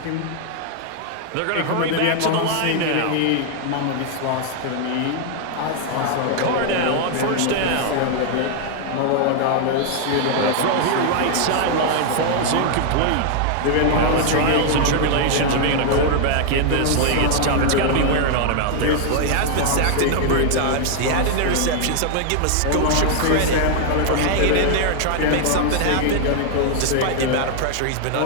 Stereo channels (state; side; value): different; both; correlation 0.00